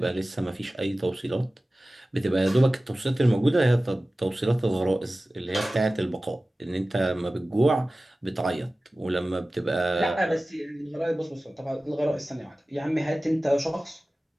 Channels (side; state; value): both; normal; correlation 0.96